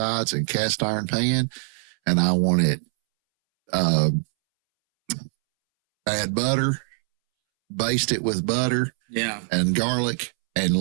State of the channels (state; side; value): silent; left; 63 dB below the other